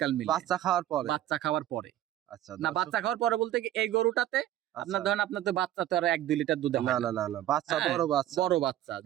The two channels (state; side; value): quieter; left; 12.8 dB